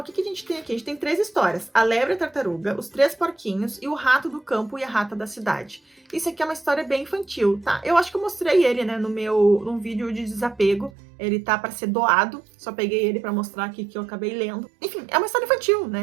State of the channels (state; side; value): drops out; left; at 10.9 s